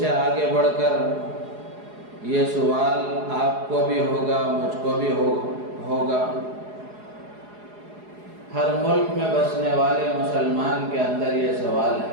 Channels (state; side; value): late; left; 4.8 ms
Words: آگے بڑھ کر یہ سوال آپ کو بھی ہوگا، مجھ کو بھی ہوگا۔ ہر ملک میں بسنے والے مسلمان کے اندر یہ سوال